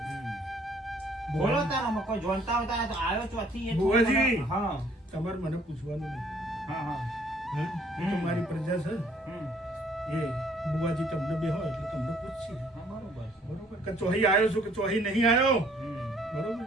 બોલો તારામાં કોઈ જોનતા હોય તારે તો આવ્યો ચોથી એ ભુવાજી. હા તમારે મને પૂછવાનું નહીં. હા હા હા એ તો મારી પ્રજા છે. હમ. એ બુવાજી તમને બે હોય એટલે તમને પૂછશે. હા બરોબર છે. બરોબર કે ચોહી આવ્યો છું કે ચોહી નહીં આવ્યો? હમ. બરોબર.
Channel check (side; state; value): both; normal; correlation 0.61